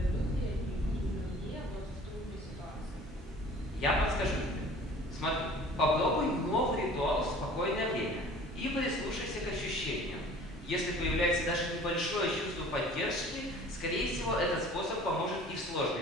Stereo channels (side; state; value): both; normal; correlation 0.47